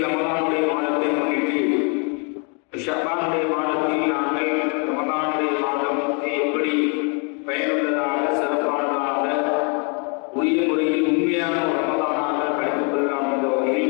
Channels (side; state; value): right; quieter; 36.7 dB